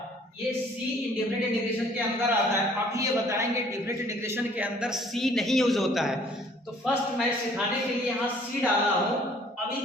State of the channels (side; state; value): both; normal; correlation 0.57